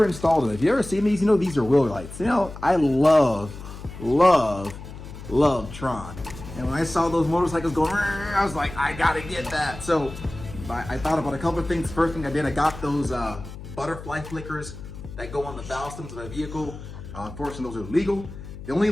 installed it. If you ever seen these, you know these are wheel lights. You know, I love Tron. And when I saw those motorcycles going, I was like, I gotta get that. So I thought about a couple of things. First thing I did, I got those butterfly flickers that go on the valve stems of my vehicle. Unfortunately, those are legal. The only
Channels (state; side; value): noise; left; hum, 13 dB below the sound